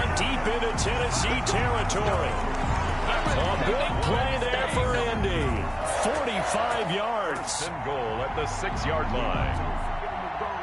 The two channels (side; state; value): both; identical; correlation 1.00